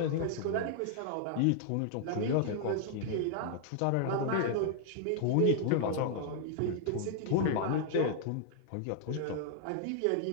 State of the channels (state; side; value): different; both; correlation 0.00